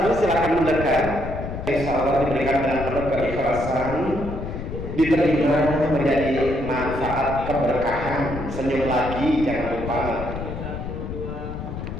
silakan mendekat. Insya Allah diberikan dengan penuh keikhlasan, diterima menjadi manfaat keberkahan. Senyum lagi, jangan lupa.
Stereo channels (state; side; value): noise; left; rumble, 7 dB below the sound